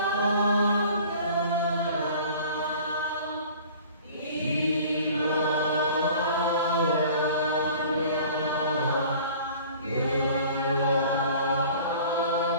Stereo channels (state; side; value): inverted; both; correlation -0.47